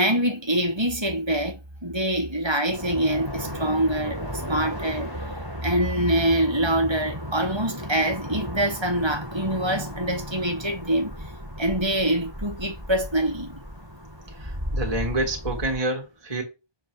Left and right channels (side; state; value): left; late; 1.3 ms